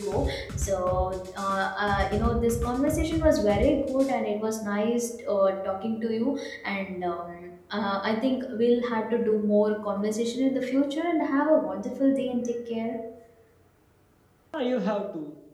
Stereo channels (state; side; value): identical; both; correlation 1.00